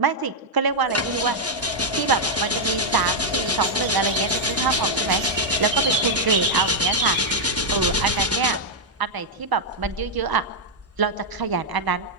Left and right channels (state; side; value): normal; both; correlation -0.03